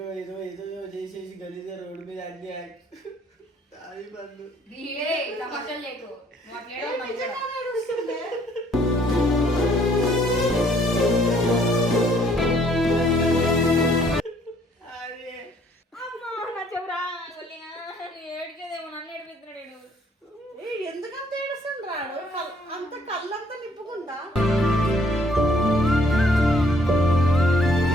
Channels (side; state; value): both; normal; correlation 0.63